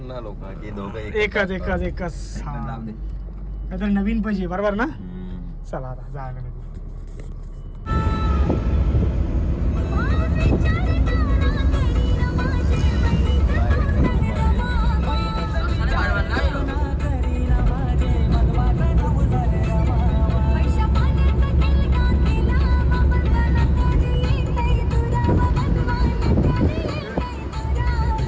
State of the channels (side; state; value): both; identical; correlation 1.00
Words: लोक की दोघं एकच काहीतरी नवीन पाहिजे बरोबर ना. चला आता जायला निघू.